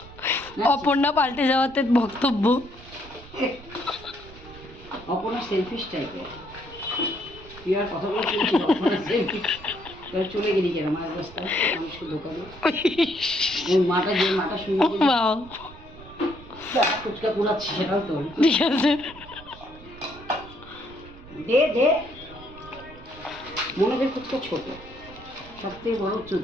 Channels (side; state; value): right; noise; rumble, 19 dB below the sound